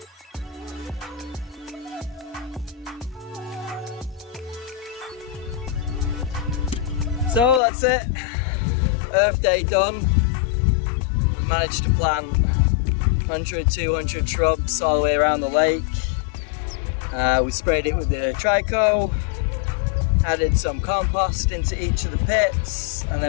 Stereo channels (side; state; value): right; drops out; at 7.6 s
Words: So that's it, Earth Day done. We managed to plant 100, 200 shrubs all the way around the lake. We sprayed it with the Trico, added some compost into each of the pits, and